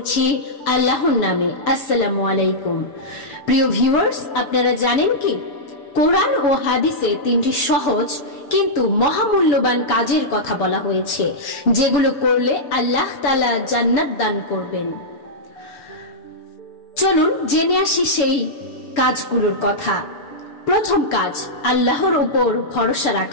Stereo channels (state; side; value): late; right; 6.9 ms